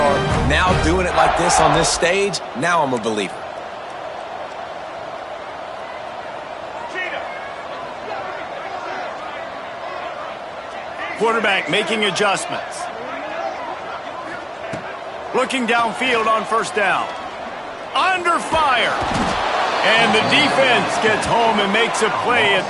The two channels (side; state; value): both; identical; correlation 1.00